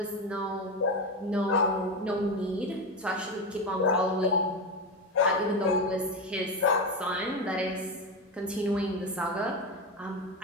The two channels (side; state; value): both; normal; correlation 0.16